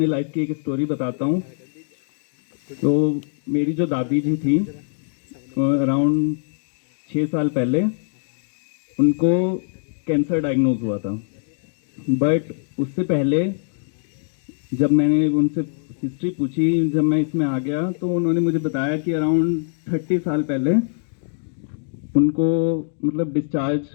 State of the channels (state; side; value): silent; right; digital silence